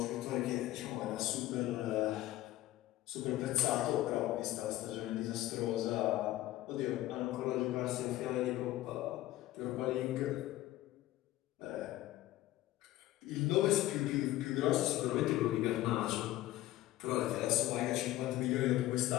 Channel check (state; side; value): quieter; right; 15.6 dB